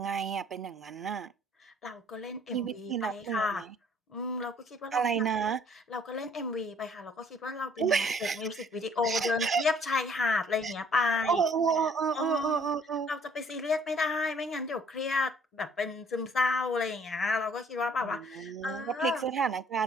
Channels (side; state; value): both; normal; correlation 0.59